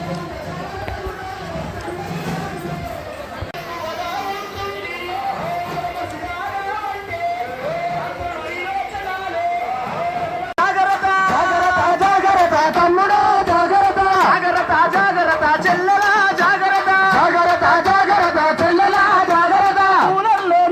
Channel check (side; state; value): both; identical; correlation 1.00